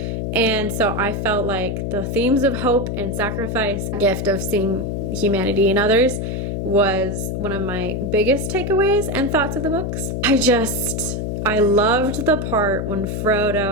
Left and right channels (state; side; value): noise; left; hum, 2 dB below the sound